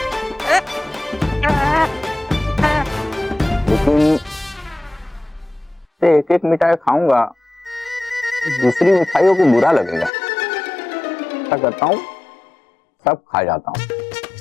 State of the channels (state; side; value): drops out; right; at 10.1 s